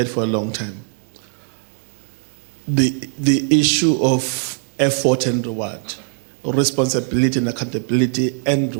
for a long time. The issue of effort and reward. responsibility and accountability and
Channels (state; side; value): silent; left; digital silence